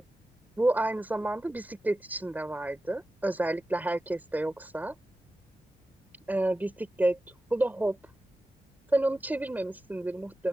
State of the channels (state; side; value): normal; both; correlation 0.94